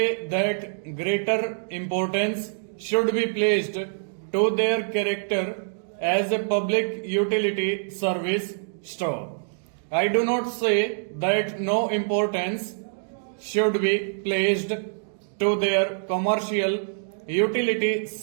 that greater importance should be placed to their character as a public utility service. Stop. I do not say that no importance should be placed to their commercial utility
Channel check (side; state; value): left; silent; digital silence